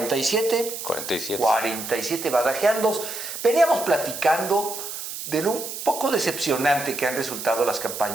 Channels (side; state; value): right; noise; hiss, 8 dB below the sound